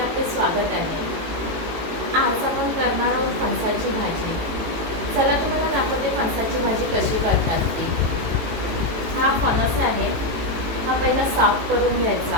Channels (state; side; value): late; left; 18 ms